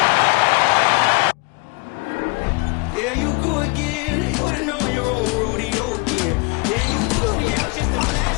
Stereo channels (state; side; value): quieter; right; 28.6 dB